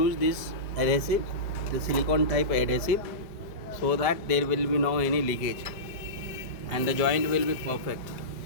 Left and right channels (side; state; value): right; late; 5.0 ms